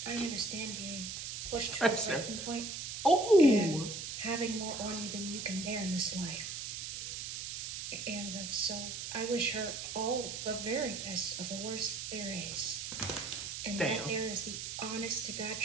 I understand being pushed to a breaking point. Oh. And having more on you than you can bear in this life. And so I wish her all the very best of the worst there is. And that there is the honest to God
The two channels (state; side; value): noise; right; hiss, 6 dB below the sound